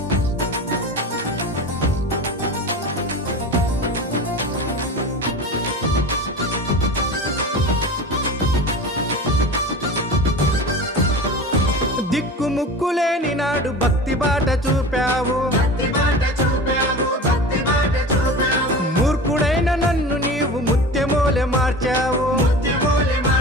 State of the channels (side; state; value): both; normal; correlation 0.33